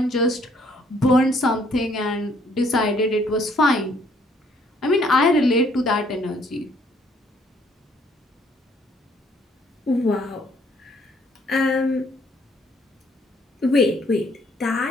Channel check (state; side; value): normal; both; correlation 0.65